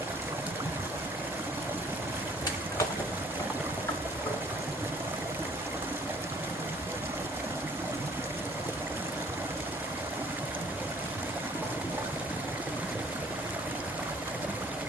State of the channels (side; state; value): both; normal; correlation 0.58